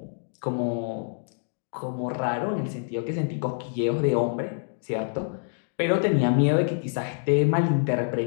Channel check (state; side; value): silent; right; digital silence